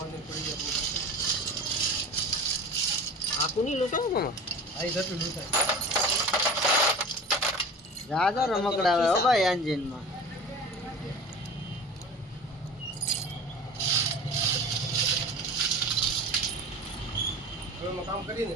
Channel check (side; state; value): both; normal; correlation 0.36